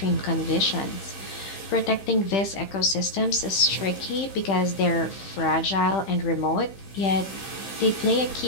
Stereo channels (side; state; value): right; late; 15 ms